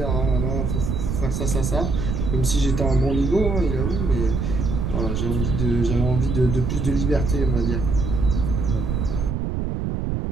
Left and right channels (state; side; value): noise; right; rumble, 1 dB below the sound